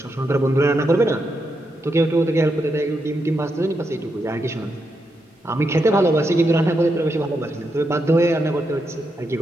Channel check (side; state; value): both; normal; correlation 0.83